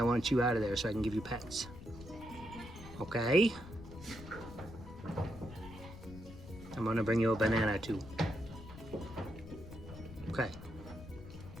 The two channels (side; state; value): left; noise; rumble, 14 dB below the sound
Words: want you out of there so I can give you pets, okay? I'm gonna bring you a banana too. Okay.